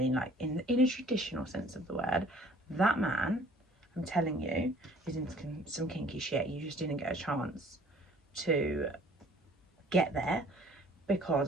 like in a traditional sense of the word. That man, I'm telling you, is into some kinky shit. You just didn't get a chance to get there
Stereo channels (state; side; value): normal; both; correlation 0.54